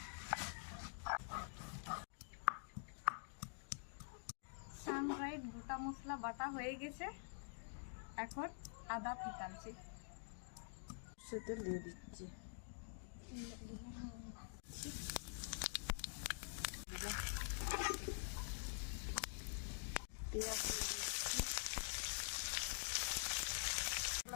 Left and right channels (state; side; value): silent; right; digital silence